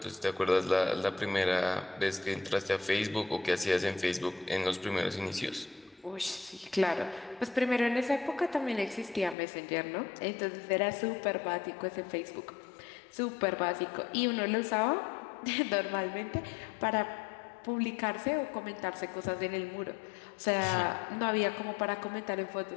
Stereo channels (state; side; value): drops out; right; at 9.3 s